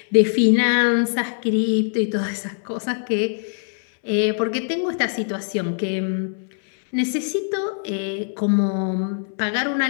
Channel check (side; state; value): right; silent; 64 dB below the other